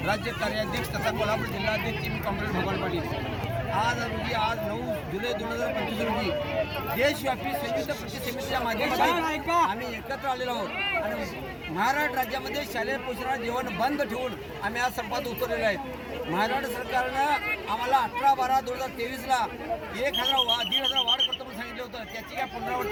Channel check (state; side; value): identical; both; correlation 1.00